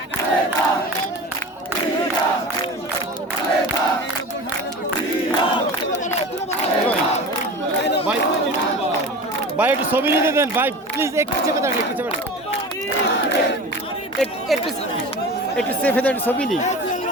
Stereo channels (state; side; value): normal; both; correlation 0.34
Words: ভাই ভাই একটু ছবি নিতে দেন ভাই প্লিজ। একটু চেপে দাঁড়ান, একটু চেপে একটু একটু চেপে দাঁড়ান, ছবি নিই।